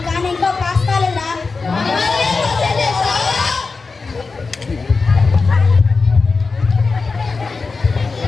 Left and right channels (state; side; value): quieter; right; 4.3 dB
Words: కానీ ఇంకా పాస్ కాలేదా?